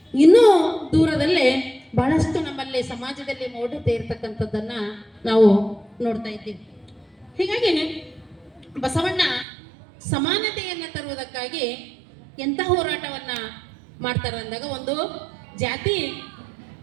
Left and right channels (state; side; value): drops out; left; at 9.5 s